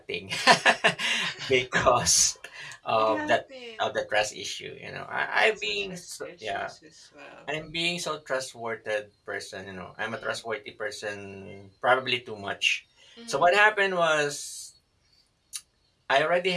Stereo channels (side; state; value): both; identical; correlation 1.00